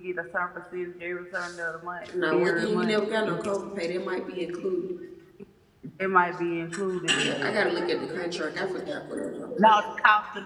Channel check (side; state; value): both; identical; correlation 1.00